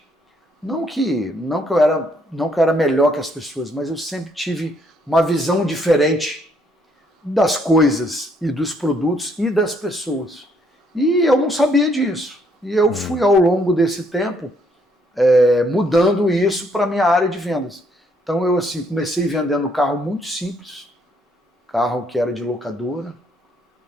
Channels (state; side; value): normal; both; correlation 0.69